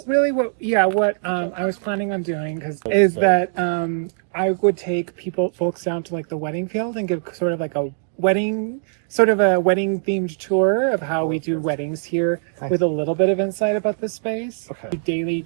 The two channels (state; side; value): silent; left; digital silence